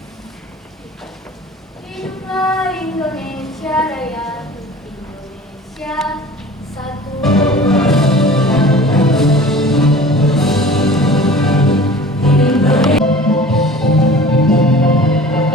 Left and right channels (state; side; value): normal; both; correlation 0.43